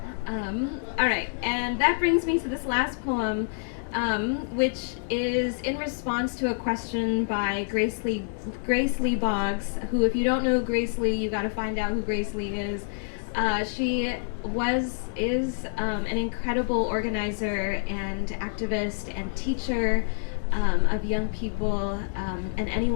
All right, and that brings me to this last poem, which is in response to a question by Grace Lee Boggs, who, if you don't know Grace Lee, you got to find out who Grace Lee is. She is an incredible organizer and activist and teacher of young people and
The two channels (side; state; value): right; silent; digital silence